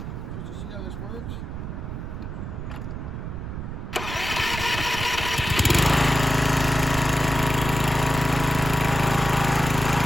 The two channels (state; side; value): noise; right; rumble, 7 dB below the sound